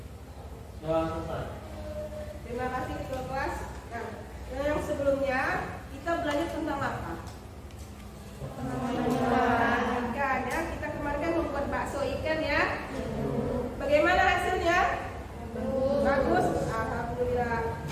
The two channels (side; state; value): both; identical; correlation 1.00